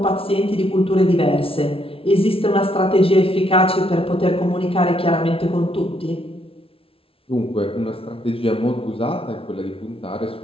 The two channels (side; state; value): right; late; 0.26 ms